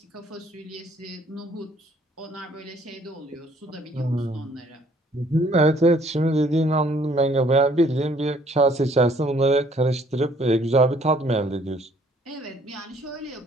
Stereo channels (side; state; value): both; normal; correlation 0.61